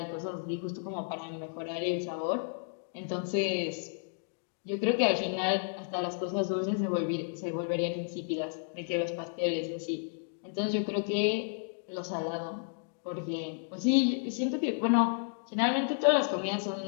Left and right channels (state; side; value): silent; right; digital silence